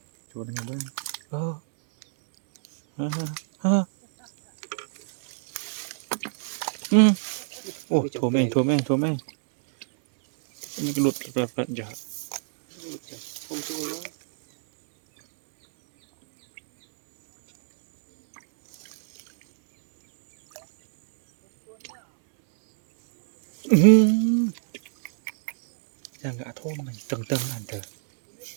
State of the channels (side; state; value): left; silent; 61 dB below the other